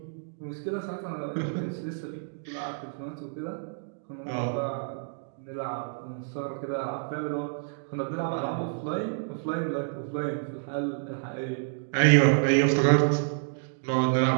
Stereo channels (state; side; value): silent; left; digital silence